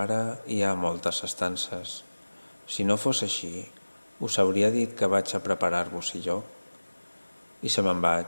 hi ha moltes estances. Si no fos així, us hauria dit que vaig a preparar-vos lloc. I se me'n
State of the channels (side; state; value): both; inverted; correlation -1.00